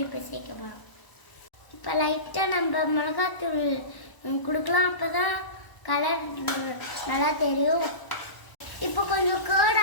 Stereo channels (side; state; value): right; late; 1.0 ms